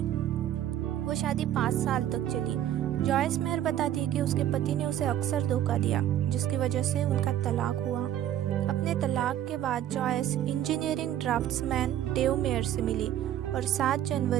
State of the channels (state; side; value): quieter; left; 11.7 dB